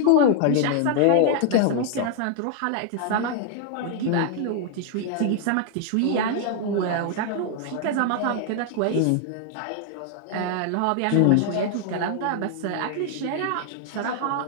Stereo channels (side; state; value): both; different; correlation 0.00